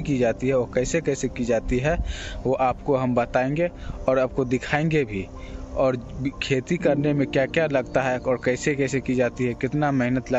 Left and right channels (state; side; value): identical; both; correlation 1.00